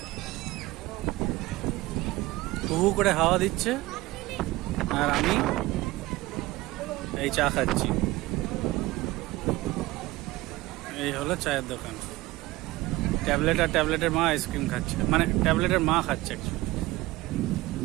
হু করে হাওয়া দিচ্ছে আর আমি এই চা খাচ্ছি। এই হলো চায়ের দোকান। ট্যাবলেট আর ট্যাবলেটের মা আইসক্রিম খাচ্ছে, মানে ট্যাবলেটের মা খাচ্ছে।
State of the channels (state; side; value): quieter; left; 19.2 dB